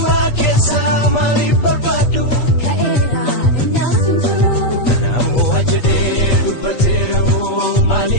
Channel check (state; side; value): late; right; 8.3 ms